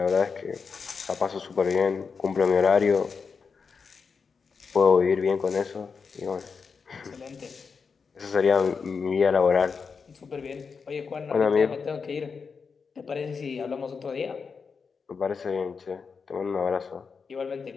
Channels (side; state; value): right; quieter; 5.4 dB